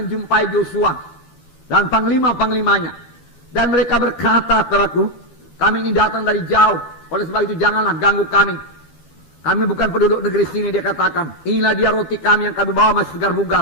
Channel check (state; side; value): late; right; 13 ms